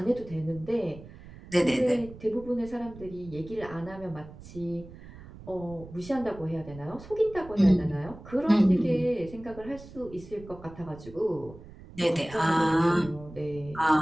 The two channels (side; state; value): right; noise; rumble, 17 dB below the sound